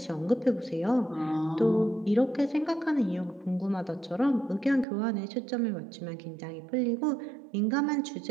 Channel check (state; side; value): drops out; left; at 4.9 s